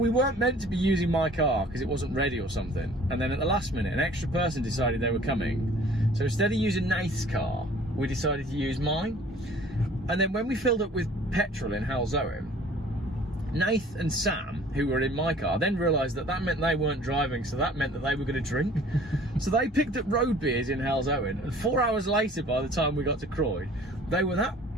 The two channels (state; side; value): normal; both; correlation 0.51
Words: meant to be using my car because it wasn't ready or something. And then at the last minute, an extra person decided they were coming. So instead of using Nath's car, we decided to use mine. And then when we filled up with petrol in Halzowen, Nath and Sam, who were in my car, then realised that meant they weren't driving, so that meant that they were going to drink. So they picked up road beers in Halzowen, and 4 hours later, by the time we got to Croyd, they were that